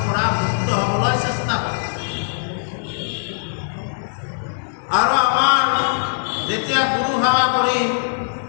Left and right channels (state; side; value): silent; right; 61 dB below the other